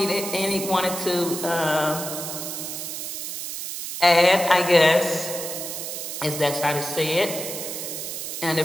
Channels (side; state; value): right; noise; hiss, 6 dB below the sound